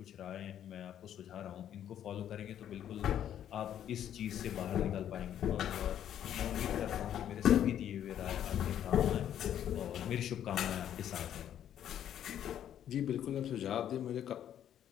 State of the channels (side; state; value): right; quieter; 10.4 dB